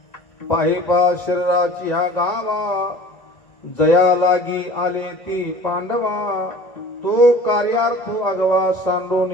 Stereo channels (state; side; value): late; right; 1.5 ms